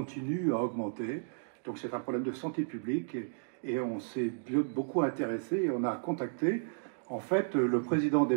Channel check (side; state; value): left; silent; digital silence